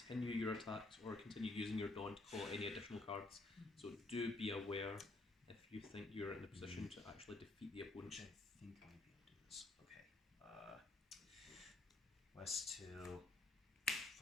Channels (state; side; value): quieter; right; 3.0 dB